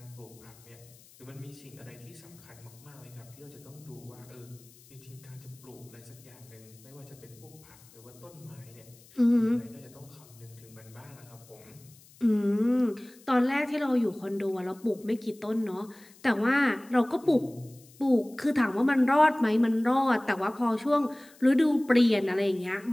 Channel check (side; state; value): left; noise; hiss, 25 dB below the sound